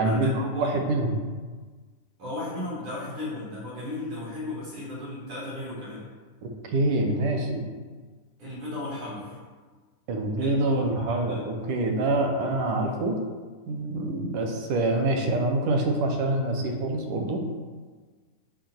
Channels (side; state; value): left; late; 9.9 ms